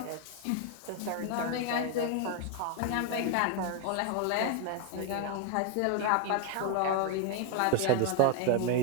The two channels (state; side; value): different; both; correlation 0.01